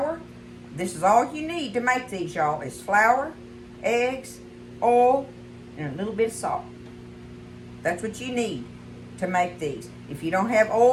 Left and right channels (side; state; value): both; identical; correlation 1.00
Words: This is all you need to make these, y'all. It's flour, eggs, oil, and a little bit of salt. That's what you need to make these. If you don't have